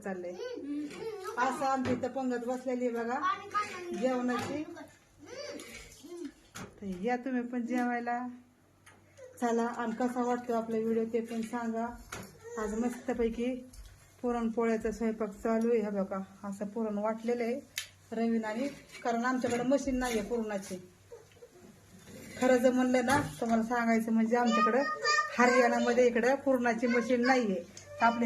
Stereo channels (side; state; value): both; identical; correlation 1.00